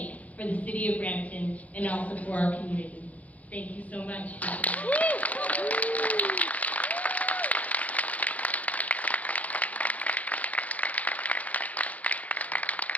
for the city of Brampton and also for our community. Thank you so much.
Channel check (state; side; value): late; right; 0.072 ms